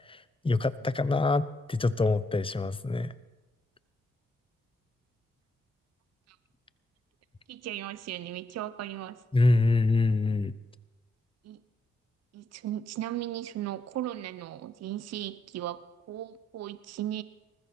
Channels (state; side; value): normal; both; correlation 0.78